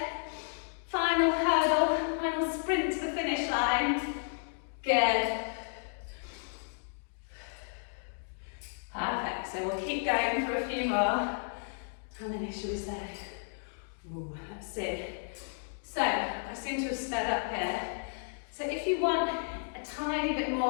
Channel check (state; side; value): silent; right; digital silence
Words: Final hurdle, final sprint to the finish line. Good. so we'll keep going for a few more. How many should we say? Ooh, let's see. So, I seem to have sped up here. So if you want a tiny bit